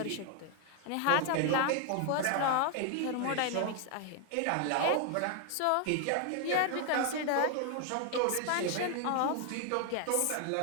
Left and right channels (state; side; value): different; both; correlation 0.00